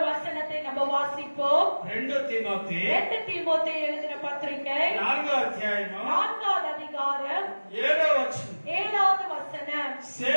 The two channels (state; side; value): inverted; both; correlation -1.00